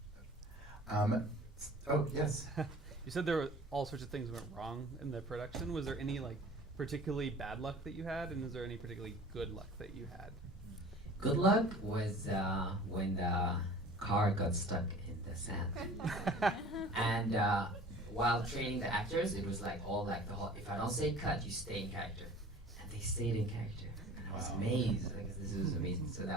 Oh, yes. You said there were all sorts of things went wrong in the production. Was there any like particularly bad luck that you had, and is there any particularly good luck that you had? Good luck was when the car got stuck in the sand. And while training the actors, it was like all like the whole, if I don't say cut, you stay in character. And they stayed in character. And I was amazed, like this was amazing. So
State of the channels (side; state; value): both; normal; correlation 0.44